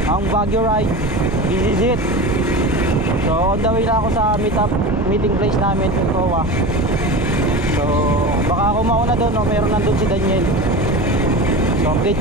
ang Baguio ride. This is it. So on the way na ako sa meeting place namin sa Towa. So baka ako mauna doon, no? Meron nandun si Daniel. So update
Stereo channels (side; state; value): both; normal; correlation 0.29